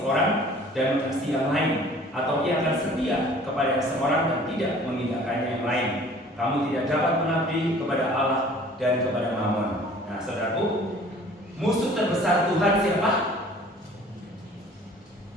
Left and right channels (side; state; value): both; normal; correlation 0.50